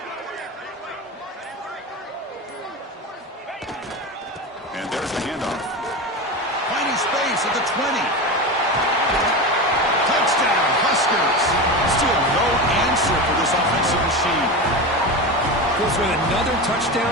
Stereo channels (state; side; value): normal; both; correlation 0.23